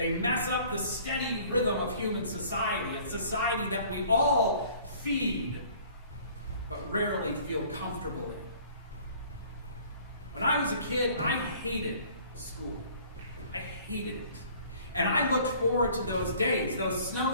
mess up the steady rhythm of human society, a society that we all feed, but rarely feel comfortable in. When I was a kid, I hated school. I hated it. And I looked forward to those days, those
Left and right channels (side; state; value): both; inverted; correlation -0.52